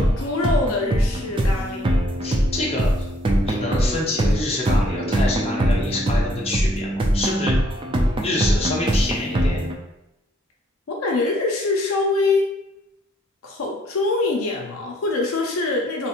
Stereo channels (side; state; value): both; normal; correlation 0.65